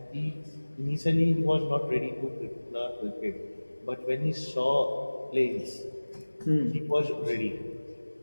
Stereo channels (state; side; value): inverted; both; correlation -1.00